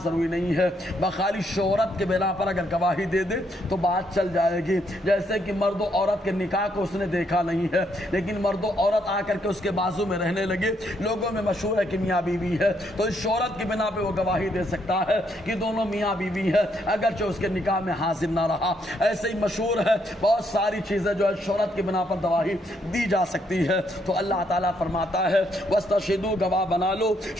ضروری نہیں ہے، بخالی شہرت کے بنا پر اگر گواہی دے دے تو بات چل جائے گی۔ جیسے کہ مرد و عورت کے نکاح کو اس نے دیکھا نہیں ہے، لیکن مرد و عورت آ کر کے اس کے بازو میں رہنے لگے، لوگوں میں مشہور ہے کہ میاں بیوی ہے، تو اس شہرت کی بنا پہ وہ گواہی دے سکتا ہے کہ دونوں میاں بیوی ہے، اگرچہ اس کے نکاح میں حاضر نہ رہا۔ ایسے ہی مشہور ہے بہت ساری چیزیں جو ہے شہرت کی بنا پر گواہی دی جا سکتی ہے۔ تو اللہ تعالیٰ فرماتا ہے وَاسْتَشْهِدُوا، گواہ بنا لو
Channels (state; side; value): normal; both; correlation 0.74